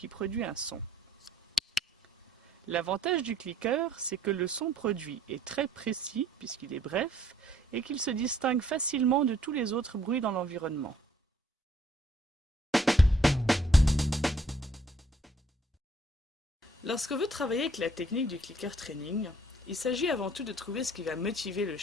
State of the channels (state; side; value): normal; both; correlation 0.62